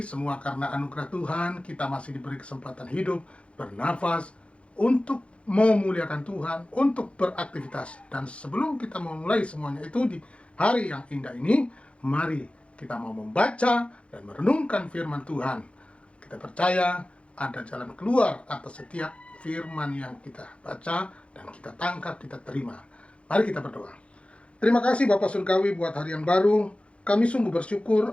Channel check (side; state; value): right; late; 0.060 ms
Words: semua karena anugerah Tuhan. Kita masih diberi kesempatan hidup, bernafas, untuk memuliakan Tuhan, untuk beraktivitas. Dan sebelum kita memulai semuanya itu di hari yang indah ini, mari kita mau membaca dan merenungkan firman Tuhan. Kita percaya ada jalan keluar atas setiap firman yang kita baca dan kita tangkap, kita terima. Mari kita berdoa. Terima kasih Bapak Surgawi buat hari yang baru. Kami sungguh bersyukur